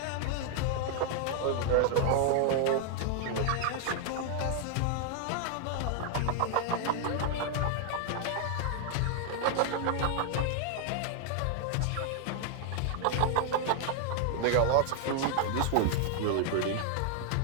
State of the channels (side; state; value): both; different; correlation 0.00